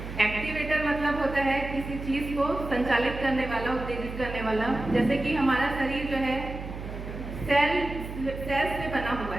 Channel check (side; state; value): right; noise; hum, 9 dB below the sound